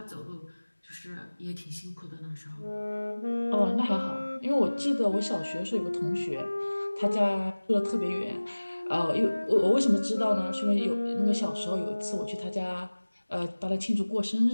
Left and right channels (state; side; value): inverted; both; correlation -1.00